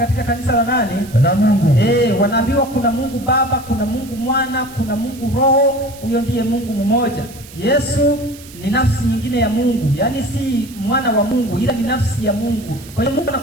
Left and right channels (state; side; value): noise; right; hiss, 19 dB below the sound